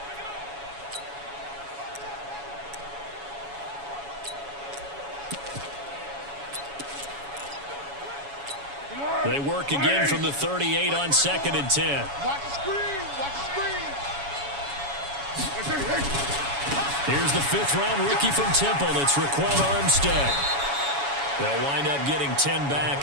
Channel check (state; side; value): late; left; 7.1 ms